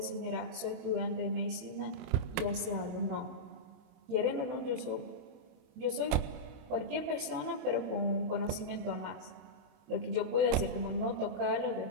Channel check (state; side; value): late; left; 21 ms